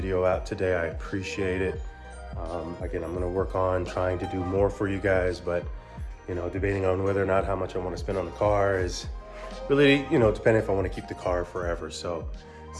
out today. I appreciate it. Again, I'm gonna work on trying to do more for you guys, but debating on whether or not how much I want to spend on the car is really, depending if I want to keep the car forever. So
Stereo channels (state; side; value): identical; both; correlation 1.00